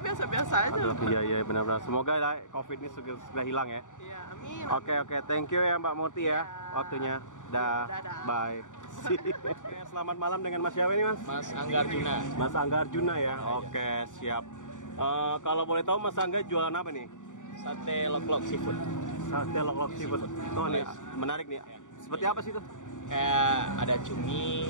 aja. Iya benar. Semoga COVID ini segera hilang ya. Iya, amin. Oke. Thank you ya Mbak Murti ya waktunya. Dadah. Bye. Oke, selamat malam dengan Mas siapa ini Mas? Mas Angga Arjuna. Mas Angga Arjuna ya. Oke, siap. Kalau boleh tahu Mas Angga jualan apa nih? Sate lok-lok seafood. Sate lok-lok seafood. Oh nih menarik nih. Seperti apa sih itu? Kayak ada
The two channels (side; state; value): right; late; 0.86 ms